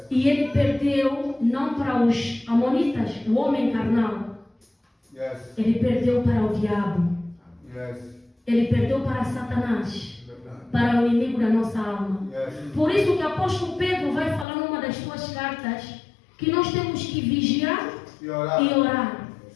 E ele perdeu não para os amonitas, o homem carnal. Ele perdeu para o diabo. Ele perdeu para Satanás, para o inimigo da nossa alma. Por isso que o apóstolo Pedro vai falar numa das suas cartas que nós temos que vigiar e orar.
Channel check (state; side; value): drops out; right; at 14.5 s